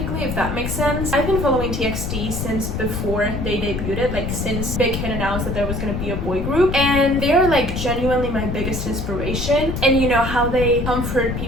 if that makes sense. I've been following TXT since before they debuted, like since Big Hit announced that there was gonna be a boy group, and they're like genuinely my biggest inspiration. And you know how they comfort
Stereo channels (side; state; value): left; noise; rumble, 3 dB below the sound